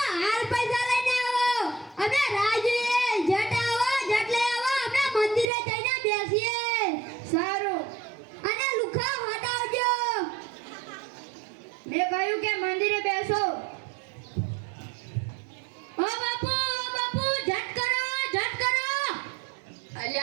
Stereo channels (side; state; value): left; drops out; at 5.5 s